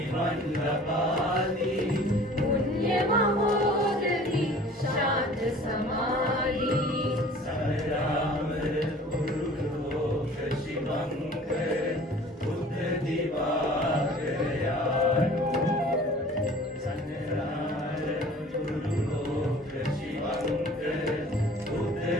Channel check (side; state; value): both; normal; correlation 0.47